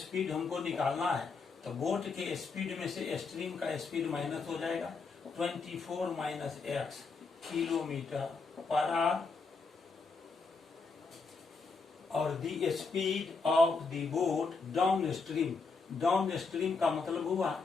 हमको निकालना है, तो बोट के स्पीड में से स्ट्रीम का स्पीड माइनस हो जाएगा। 24 minus x kilometre per hour, और the speed of the boat downstream, downstream का मतलब हुआ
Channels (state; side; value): quieter; right; 4.4 dB